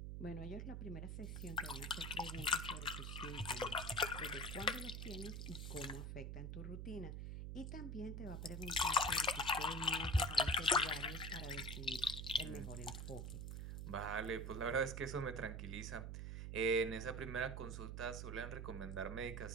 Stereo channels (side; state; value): right; noise; hum, 5 dB below the sound